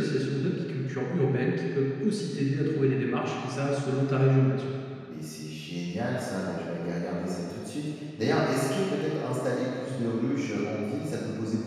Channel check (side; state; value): both; identical; correlation 1.00